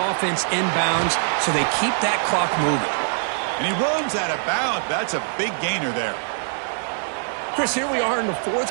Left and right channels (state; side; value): silent; left; digital silence